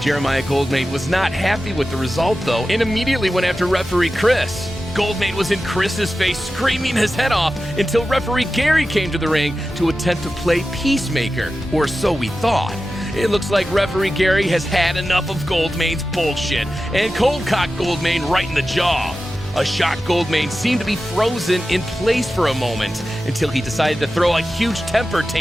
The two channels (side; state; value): both; normal; correlation 0.93